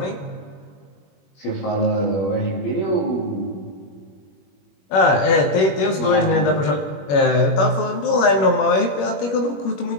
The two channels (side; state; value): right; late; 21 ms